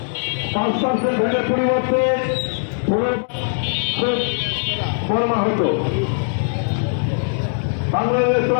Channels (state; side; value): silent; right; digital silence